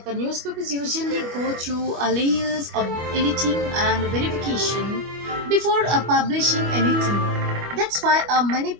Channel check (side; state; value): left; late; 25 ms